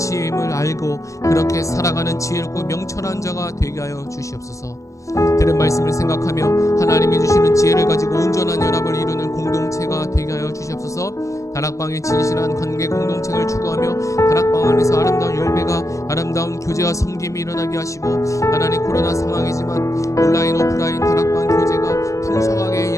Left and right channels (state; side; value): late; right; 0.15 ms